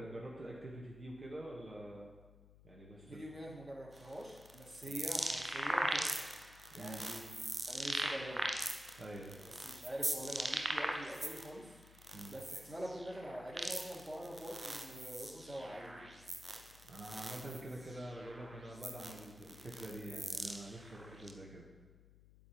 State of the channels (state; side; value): noise; left; hum, 20 dB below the sound